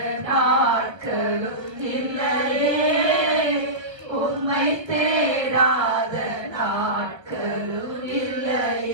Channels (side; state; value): left; late; 1.4 ms